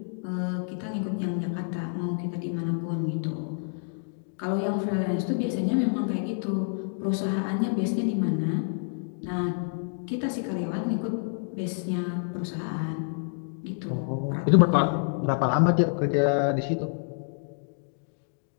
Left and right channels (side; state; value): right; silent; digital silence